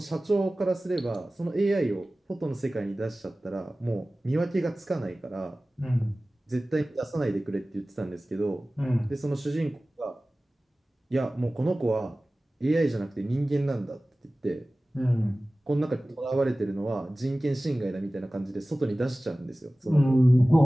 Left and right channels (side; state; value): both; normal; correlation 0.97